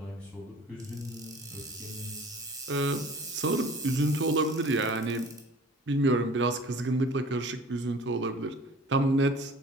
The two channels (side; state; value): both; normal; correlation 0.46